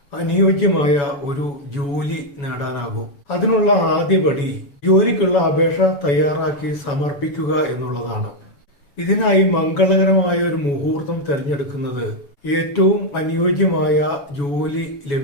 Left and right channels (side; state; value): right; late; 7.1 ms